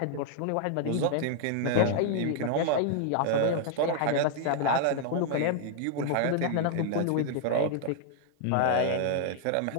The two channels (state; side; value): different; both; correlation -0.01